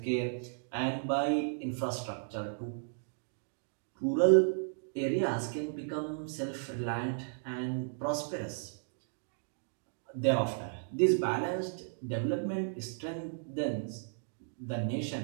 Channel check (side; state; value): left; silent; digital silence